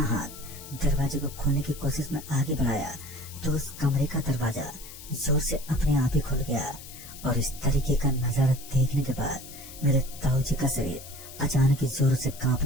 हाथ दरवाजे को खोलने की कोशिश में आगे बढ़ाया तो उस कमरे का दरवाजा जोर से अपने आप ही खुल गया। और इस तरीके का नजारा देखने के बाद मेरे ताऊजी का शरीर अचानक ही जोर से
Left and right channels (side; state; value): left; noise; hiss, 15 dB below the sound